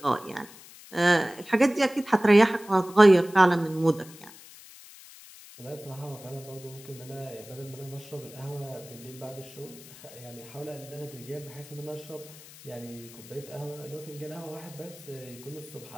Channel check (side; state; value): left; noise; hiss, 19 dB below the sound